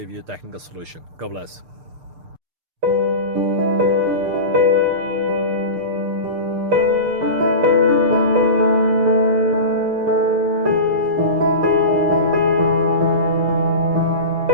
you a technical solution. God bless.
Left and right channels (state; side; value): late; left; 6.7 ms